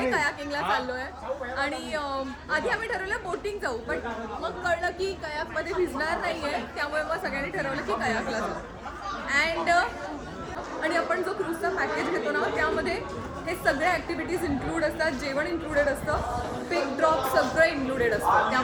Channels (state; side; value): identical; both; correlation 1.00